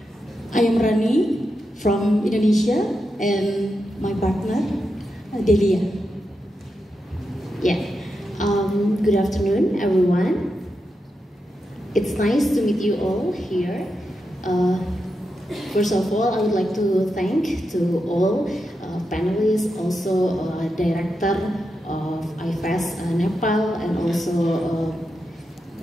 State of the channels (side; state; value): both; normal; correlation 0.87